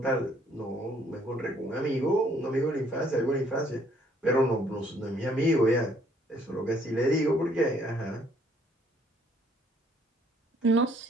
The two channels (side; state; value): both; normal; correlation 0.64